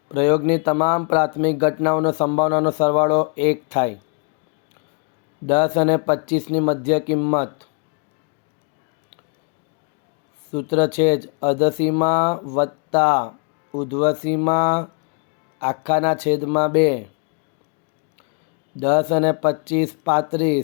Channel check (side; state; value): right; quieter; 36.0 dB